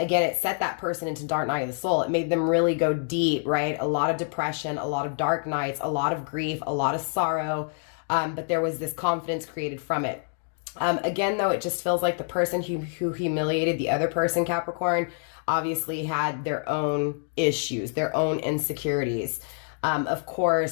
it set that person into dark night of the soul. It made them really go deep, right? A lot of depression, a lot of dark nights, a lot of grief, a lot of sorrow. But there was this confidence created from it. Again, though, it just feels like the person who humiliated the other person, Capricorn, obviously had their own issues, their own insecurities. Of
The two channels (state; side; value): silent; right; 60 dB below the other